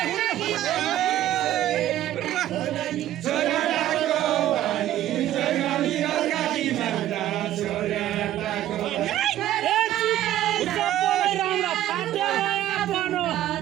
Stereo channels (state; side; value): quieter; left; 13.0 dB